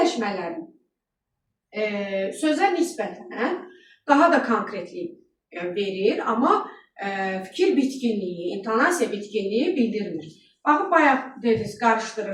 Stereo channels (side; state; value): both; identical; correlation 1.00